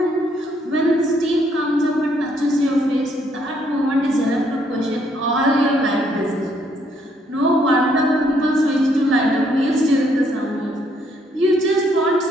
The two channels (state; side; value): normal; both; correlation 0.69